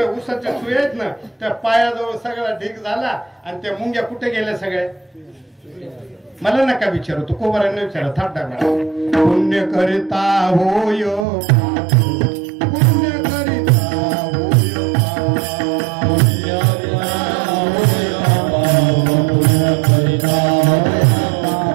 ऊसाच्या चुया आहेत ना त्या पायाजवळ सगळा ढीक झाला आणि त्या मुंग्या कुठे गेल्या सगळ्या मला नका विचारू तू कोबरांना विचारा थाट टाका पुण्य करिता होय पुण्य करिता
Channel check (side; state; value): left; drops out; at 11.2 s